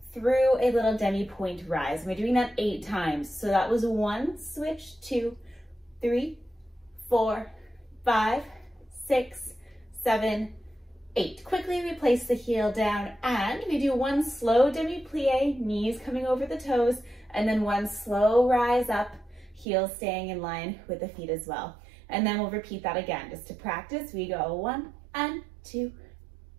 through a little demi-point rise. We're doing that 8 times. So that was 1, switch, 2, 3, 4, 5, 6, 7, 8. Quickly we place the heel down and we do 1 slow demi-plie, knees coming over the toes, and then 1 slow rise up, heels staying in line with the feet as well. And then we'll repeat that again. Just to practice, we go 1 and 2,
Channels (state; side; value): drops out; left; at 19.7 s